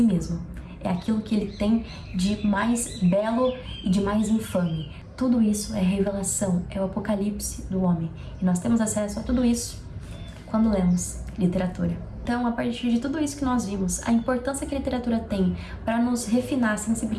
mesmo. É aquilo que ele tem de mais belo e de mais infame. Tudo isso é revelação, é o apocalipse do homem. E nós temos acesso a tudo isso quando lemos literatura. Então, a partir de tudo isso que nós vimos, a importância que a literatura tem para nos refinar a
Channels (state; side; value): identical; both; correlation 1.00